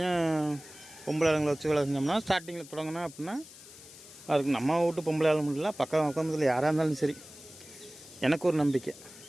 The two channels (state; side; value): noise; left; hiss, 18 dB below the sound